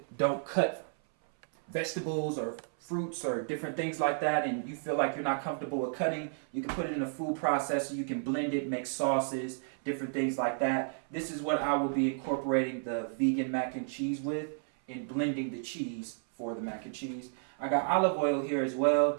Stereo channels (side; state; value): left; silent; 56 dB below the other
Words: don't cut vegetables or fruits or different things like that and you feel like you're not comfortable with cutting, you can put it in a food processor. You can blend it, make sauces, different things like that. This is what I will be incorporating the vegan mac and cheese with, in blending the cheese for the mac and cheese. I got olive oil here as well